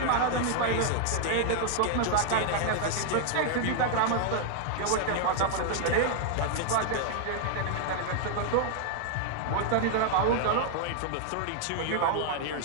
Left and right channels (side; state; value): both; different; correlation 0.00